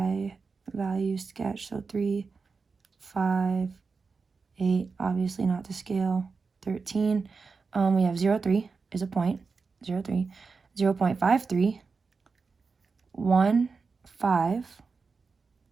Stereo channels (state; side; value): quieter; left; 4.7 dB